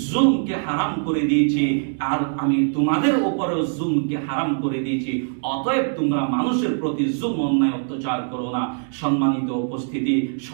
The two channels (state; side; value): silent; left; digital silence